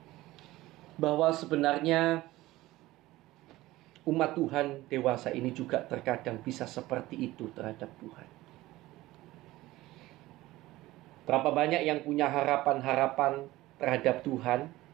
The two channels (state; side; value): quieter; left; 17.7 dB